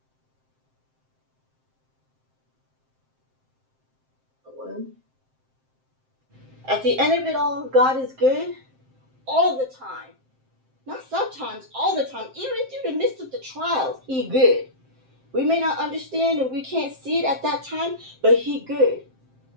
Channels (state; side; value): late; left; 7.6 ms